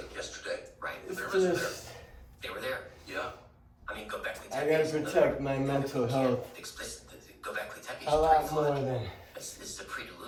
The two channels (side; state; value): both; identical; correlation 1.00